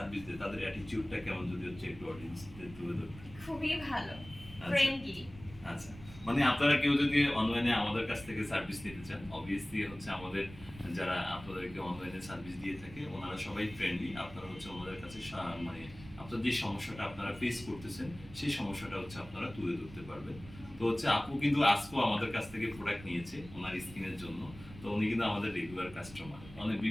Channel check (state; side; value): noise; right; rumble, 17 dB below the sound